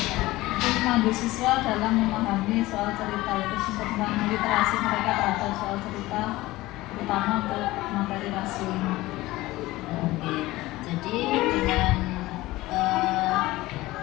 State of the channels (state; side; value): quieter; right; 18.4 dB